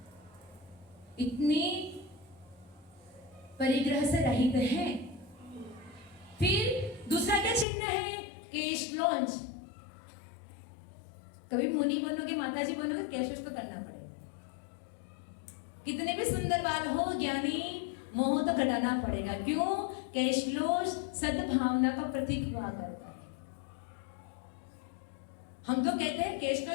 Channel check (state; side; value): drops out; right; at 7.7 s